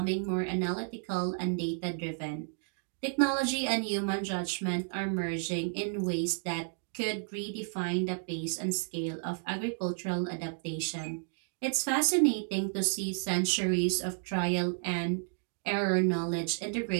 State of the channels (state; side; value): silent; left; digital silence